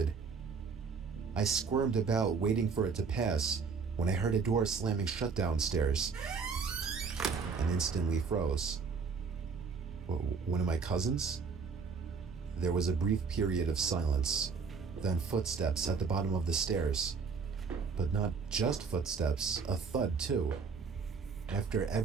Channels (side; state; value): left; quieter; 5.3 dB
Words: I squirmed about, waiting for it to pass, when I heard a door slamming shut downstairs, and instantly froze. One of my cousins? There was a brief period of silence, then footsteps at the bottom of the stairs. But not just footsteps, a thud too. After